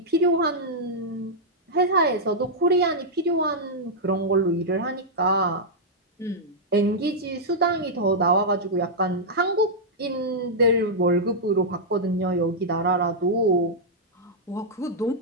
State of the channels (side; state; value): both; normal; correlation -0.07